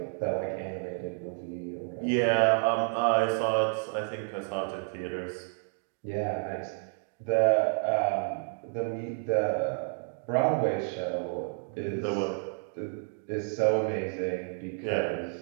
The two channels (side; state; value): left; silent; 58 dB below the other